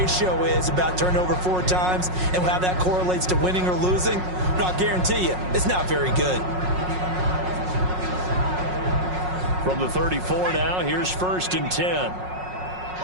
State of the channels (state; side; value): late; left; 5.5 ms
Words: is about turnover 4 times and how that correlates to winning or losing. But I'll guarantee you, it's not very good. From the 34 now, here's 1st and 10.